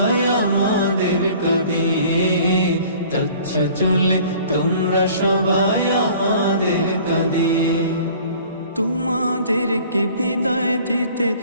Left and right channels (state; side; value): inverted; both; correlation -0.50